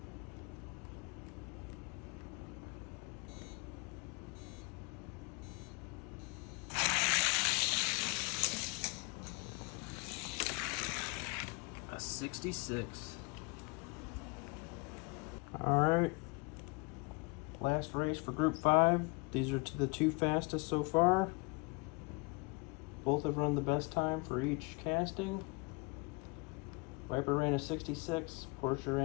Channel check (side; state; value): right; quieter; 28.7 dB